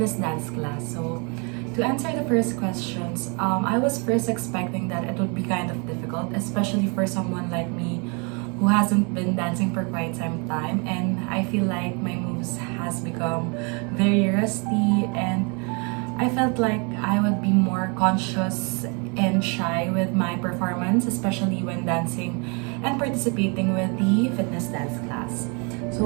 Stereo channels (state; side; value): quieter; left; 33.2 dB